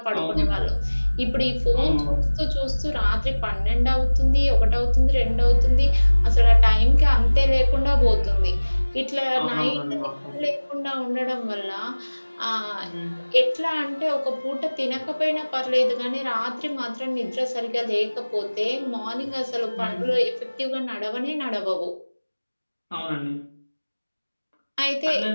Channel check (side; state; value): both; inverted; correlation -1.00